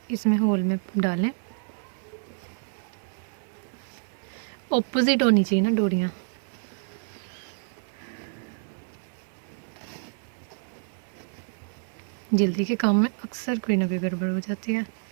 इसमें होल में डालें, ऑपोजिट होनी चाहिए ना डोरियाँ। जल्दी के काम में अक्सर कोई ना कोई गड़बड़ हो जाती है।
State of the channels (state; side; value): silent; left; digital silence